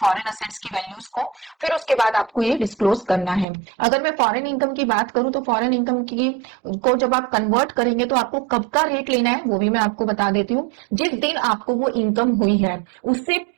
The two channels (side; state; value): left; drops out; at 3.5 s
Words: फॉरेन असेट्स की वैल्यूज को, फिर उसके बाद आपको ये डिस्क्लोज करना है। अगर मैं फॉरेन इनकम की बात करूं तो फॉरेन इनकम की को जब आप कन्वर्ट करेंगे तो आपको कब का रेट लेना है वो भी मैं आपको बता देती हूँ। जिस दिन आपको वो इनकम हुई है उससे